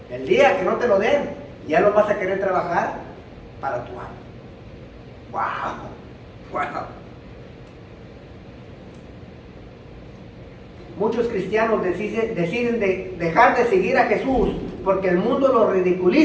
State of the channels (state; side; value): identical; both; correlation 1.00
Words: el día que no te lo den, ya no vas a querer trabajar para tu amo. ¡Wow! Muchos cristianos deciden dejar de seguir a Jesús porque el mundo los